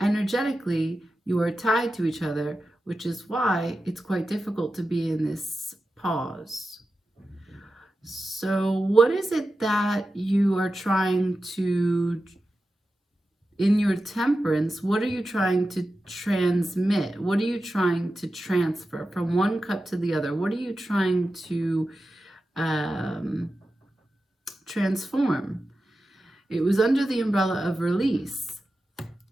Energetically, you are tied to each other, which is why it's quite difficult to be in this pause. So what is it that you are trying to, in your temperance, what are you trying to transmit? What are you trying to transfer from one cup to the other? What are you trying to transform? It was under the umbrella of release.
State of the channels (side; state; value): both; normal; correlation 0.92